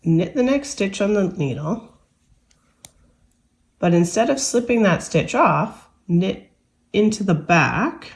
knit the next stitch on the needle, but instead of slipping that stitch off, knit into the back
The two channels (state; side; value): identical; both; correlation 1.00